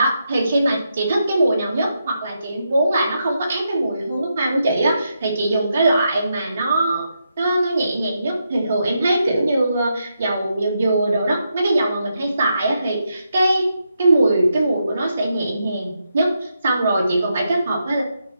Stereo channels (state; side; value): inverted; both; correlation -0.83